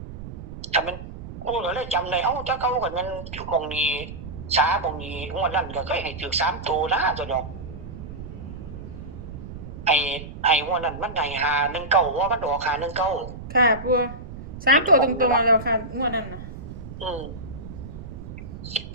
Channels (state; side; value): noise; right; rumble, 11 dB below the sound